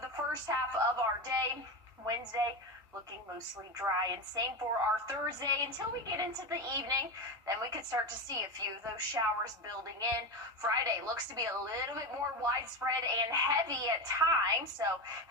the first half of our day. Wednesday, looking mostly dry, and same for our Thursday until we get into the evening. Then we could start to see a few of those showers building in. Friday looks to be a little bit more widespread and heavy at times, so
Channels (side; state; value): both; normal; correlation 0.18